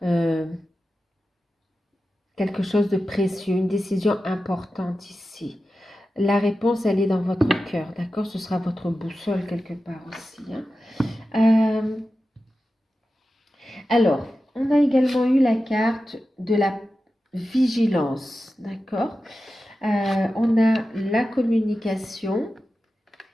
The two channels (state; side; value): normal; both; correlation 0.93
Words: quelque chose de précieux, une décision importante ici. La réponse, elle est dans votre cœur, d'accord? Ce sera votre boussole quelque part aussi, hein. Alors, on a également eu la carte de la vigilance, d'accord? On a la communication,